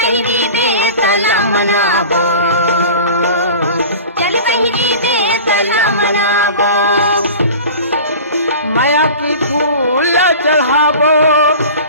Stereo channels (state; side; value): inverted; both; correlation -0.37